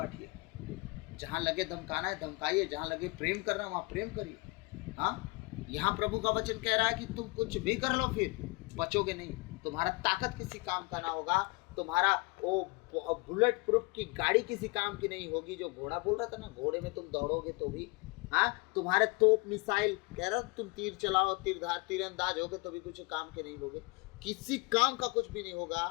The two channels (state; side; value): quieter; right; 27.5 dB